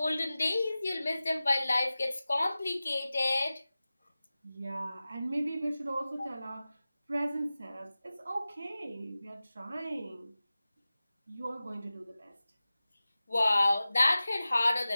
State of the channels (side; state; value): both; inverted; correlation -0.96